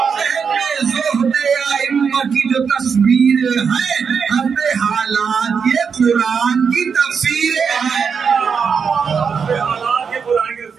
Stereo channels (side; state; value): left; quieter; 6.2 dB